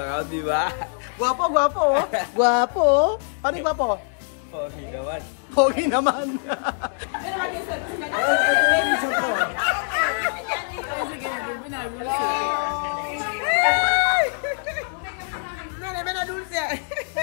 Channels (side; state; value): right; silent; 58 dB below the other